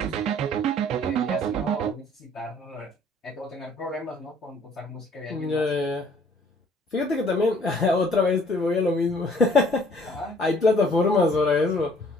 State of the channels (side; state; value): both; normal; correlation 0.58